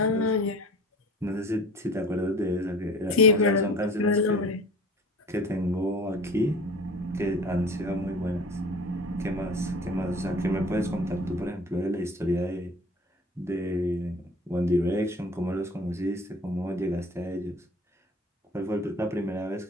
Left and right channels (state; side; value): normal; both; correlation 0.44